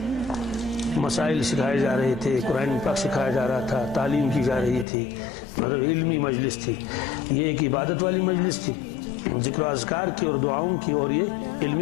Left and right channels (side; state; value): right; drops out; at 4.9 s